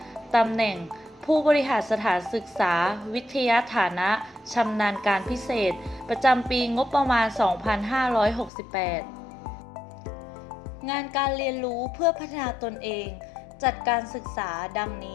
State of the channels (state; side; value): drops out; right; at 8.5 s